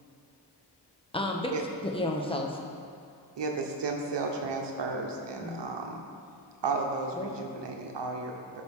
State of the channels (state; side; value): normal; both; correlation 0.10